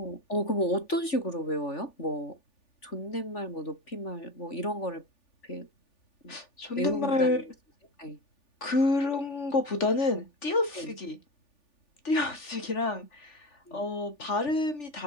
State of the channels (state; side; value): late; right; 3.4 ms